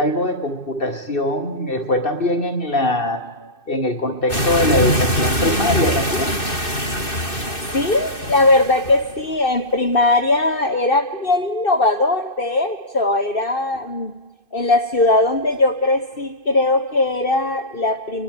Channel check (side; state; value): right; late; 2.6 ms